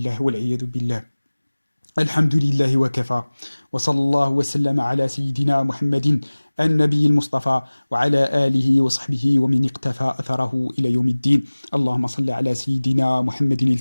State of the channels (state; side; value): inverted; both; correlation -1.00